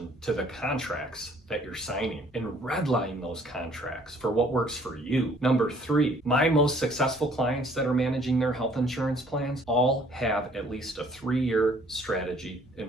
to the contracts that you're signing and redline those contracts for what works for you. Number 3, my most successful clients that are managing their health insurance plans all have at least a 3-year strategy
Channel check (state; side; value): normal; both; correlation 0.59